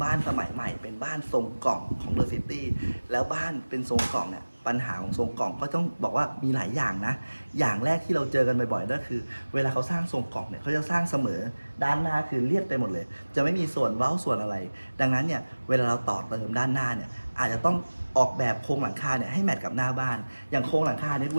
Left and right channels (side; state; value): both; inverted; correlation -1.00